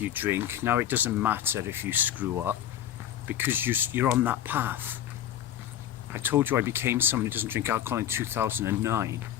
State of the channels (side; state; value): right; quieter; 10.9 dB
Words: you drink, now it doesn't matter if you screw up, because you're on that path. I told you I became someone who doesn't drink alcohol in 2009.